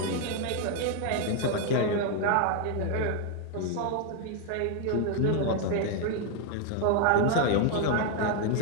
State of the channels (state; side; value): different; both; correlation 0.00